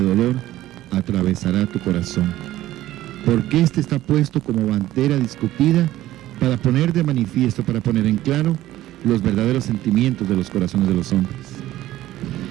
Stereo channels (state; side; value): quieter; left; 14.7 dB